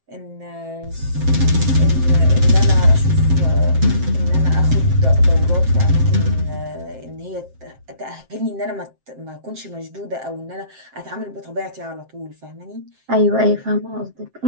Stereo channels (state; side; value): late; left; 7.6 ms